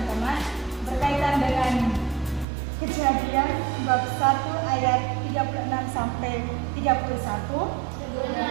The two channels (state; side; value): drops out; left; at 2.5 s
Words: berkaitan dengan Kejadian bab 1 ayat 36 sampai 31.